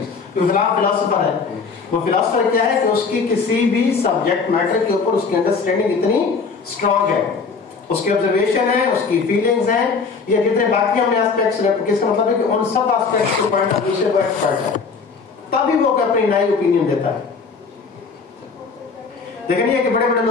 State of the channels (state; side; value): quieter; right; 5.0 dB